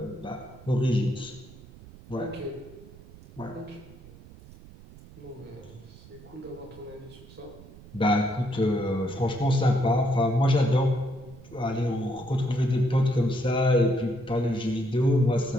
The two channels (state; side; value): noise; right; rumble, 20 dB below the sound